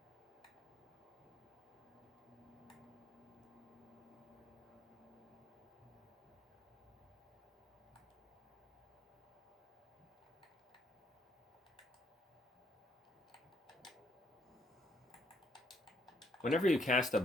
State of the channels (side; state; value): both; normal; correlation 0.69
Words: Whenever you cast a